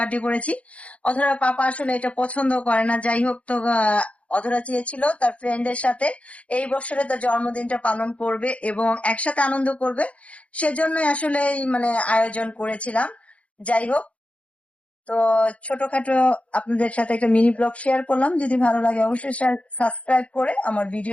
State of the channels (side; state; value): right; late; 0.063 ms